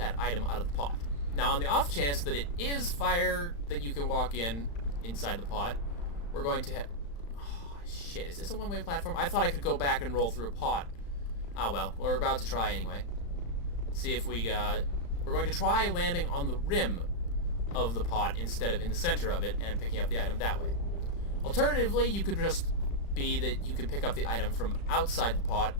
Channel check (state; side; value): late; right; 35 ms